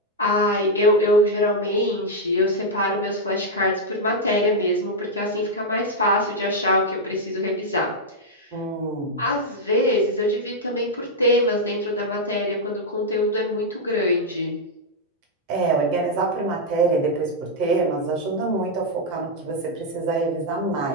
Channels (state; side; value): normal; both; correlation -0.02